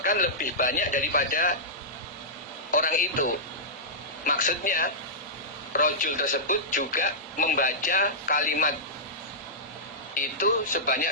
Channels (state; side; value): normal; both; correlation -0.15